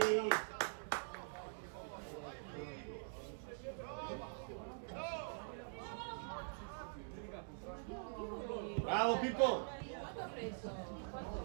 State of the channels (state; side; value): silent; left; digital silence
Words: Bravo Pippo! Quanto ha preso?